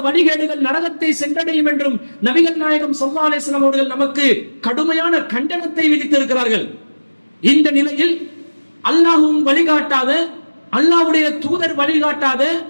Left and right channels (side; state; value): both; inverted; correlation -1.00